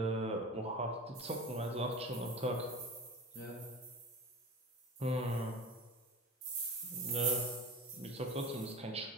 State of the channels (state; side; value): normal; both; correlation 0.33